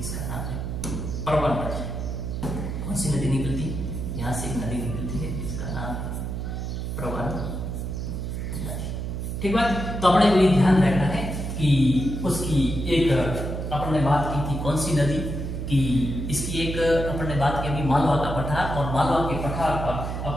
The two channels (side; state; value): right; noise; hum, 4 dB below the sound